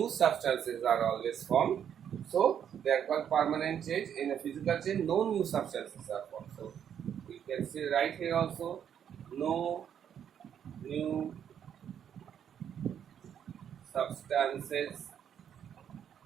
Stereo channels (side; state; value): left; quieter; 8.9 dB